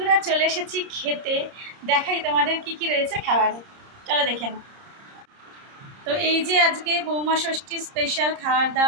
চলে এসেছি খেতে, দেখাই তোমাদের কি কি রয়েছে খাবারে, চলো দেখে নাও। তো এই যে আজকে বৌমা ষষ্ঠী স্পেশাল খাবার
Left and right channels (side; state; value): left; late; 30 ms